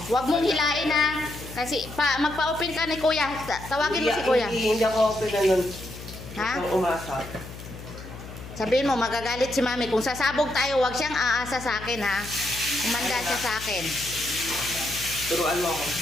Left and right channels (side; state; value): left; noise; hum, 13 dB below the sound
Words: Huwag mong hilain ha. Kasi magpa-open ka ni Kuya. Tawagin mo si Kuya. Hindi ako open na nun. Ha? Ito umasa. Sabihin mo, magagalit si Mami. Kung sasabog tayo, huwag siyang aasa sa akin ha. Umanda siya sa akin. Turuan mo ako.